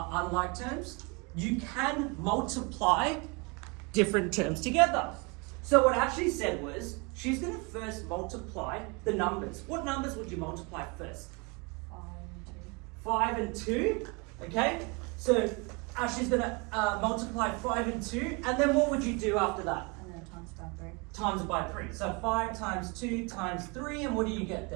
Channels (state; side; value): quieter; left; 29.9 dB